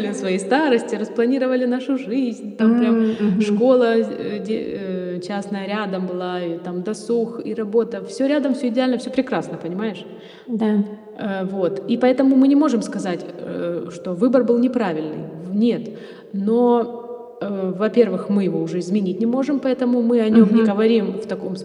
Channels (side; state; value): both; identical; correlation 1.00